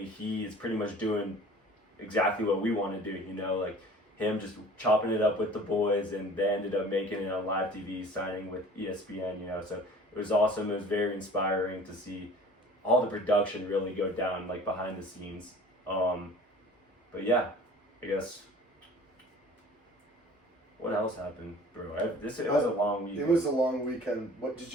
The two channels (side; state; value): both; normal; correlation 0.46